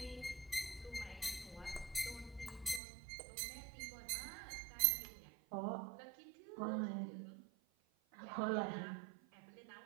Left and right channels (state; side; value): drops out; left; at 2.8 s